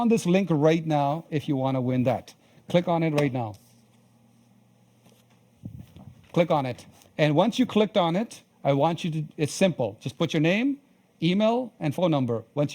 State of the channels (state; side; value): identical; both; correlation 1.00